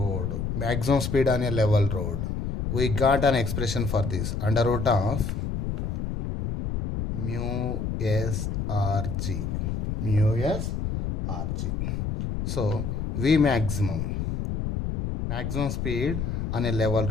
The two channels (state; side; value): noise; left; rumble, 2 dB below the sound